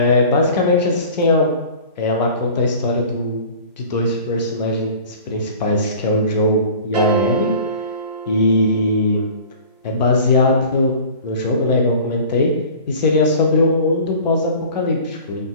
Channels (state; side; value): inverted; both; correlation -0.43